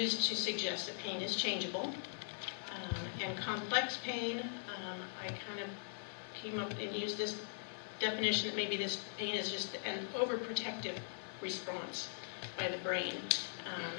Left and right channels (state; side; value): silent; right; digital silence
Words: to suggest that pain is changeable. And complex pain, I kind of came up and used this definition that maybe this pain is just an overprotective response by the brain,